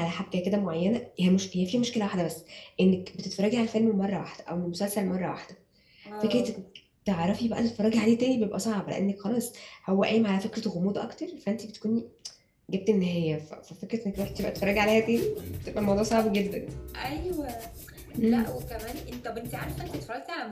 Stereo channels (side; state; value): both; identical; correlation 1.00